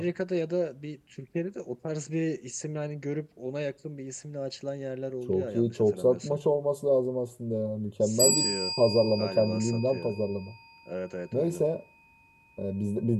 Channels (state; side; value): identical; both; correlation 1.00